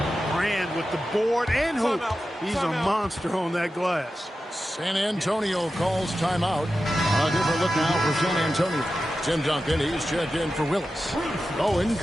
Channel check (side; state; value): both; normal; correlation 0.92